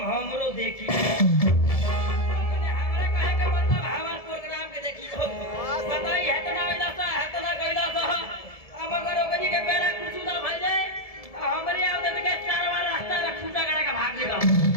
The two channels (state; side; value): late; right; 1.7 ms